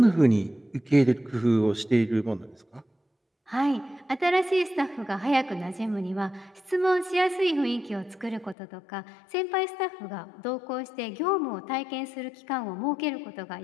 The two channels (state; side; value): drops out; right; at 8.6 s